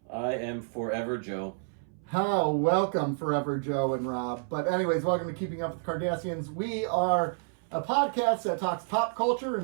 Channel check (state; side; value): silent; left; 58 dB below the other